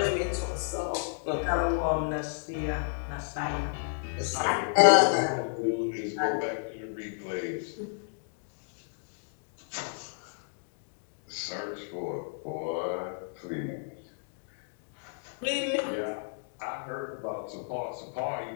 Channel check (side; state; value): right; silent; digital silence